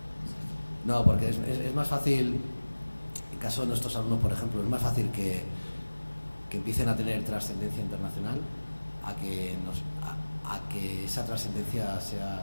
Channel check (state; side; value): inverted; both; correlation -1.00